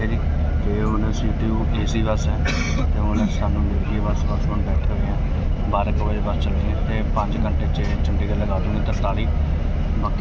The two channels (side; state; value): both; identical; correlation 1.00